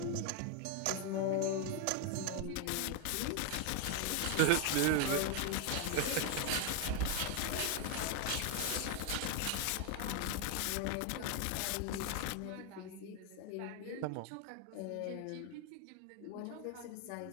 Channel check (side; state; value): both; different; correlation 0.01